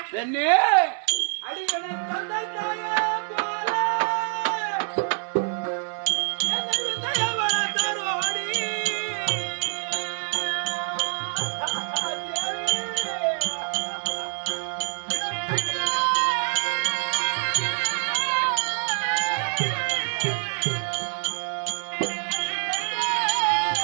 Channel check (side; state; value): left; silent; 61 dB below the other